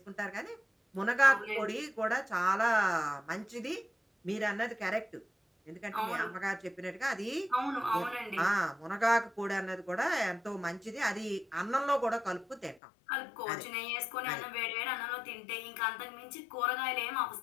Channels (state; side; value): drops out; right; at 12.8 s